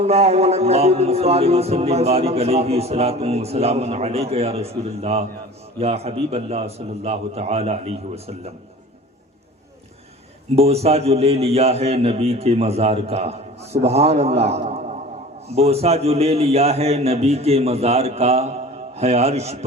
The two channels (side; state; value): both; normal; correlation 0.41